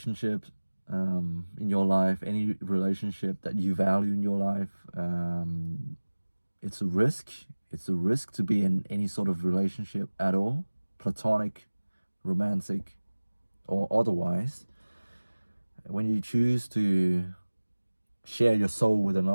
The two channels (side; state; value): both; inverted; correlation -1.00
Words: in your life, any relationship that you value in your life. It's a risk. It's a risk to be in any sort of relationship at all, platonic, romantic, or otherwise. When you choose to share your soul with